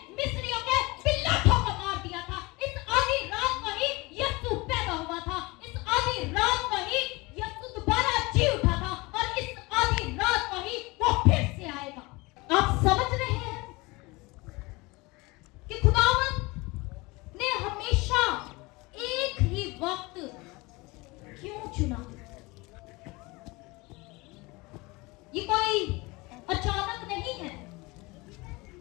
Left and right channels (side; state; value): right; quieter; 24.0 dB